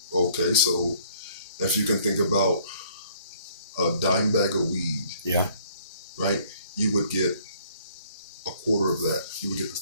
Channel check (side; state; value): both; inverted; correlation -0.60